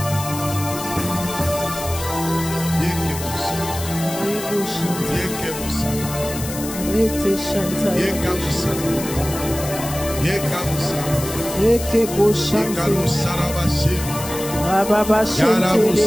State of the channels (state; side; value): noise; left; hiss, 9 dB below the sound